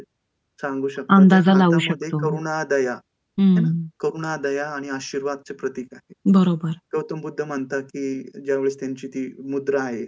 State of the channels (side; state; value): both; identical; correlation 1.00